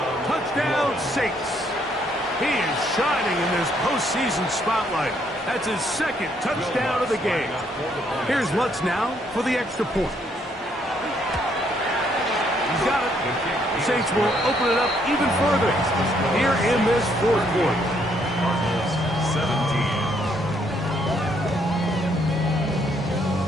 Touchdown Saints. He is shining in this postseason spotlight. That's his 2nd touchdown of the game. Here's Lutz now for the extra point. He's got it. The Saints will open it up even further here in this 4th quarter.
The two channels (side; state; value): both; normal; correlation 0.70